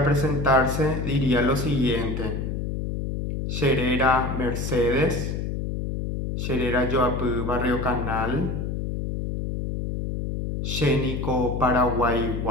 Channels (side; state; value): left; noise; hum, 3 dB below the sound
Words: presentarse diría lo siguiente: Sherera Mercedes, Sherera Yoapú Barrio Canal, Xénico